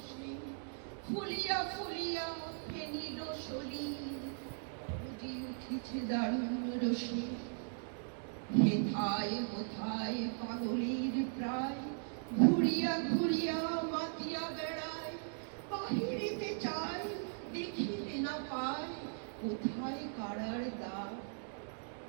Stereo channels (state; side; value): silent; left; digital silence